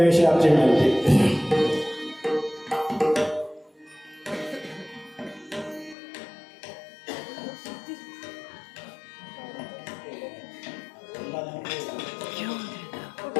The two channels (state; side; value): drops out; right; at 6.0 s